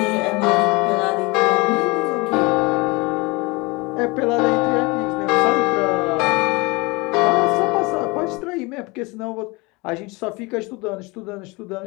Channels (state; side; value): quieter; right; 25.4 dB